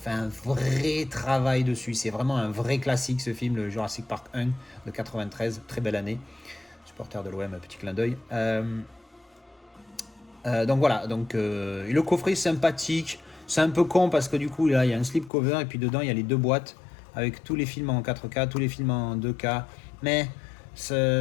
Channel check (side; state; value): right; drops out; at 15.3 s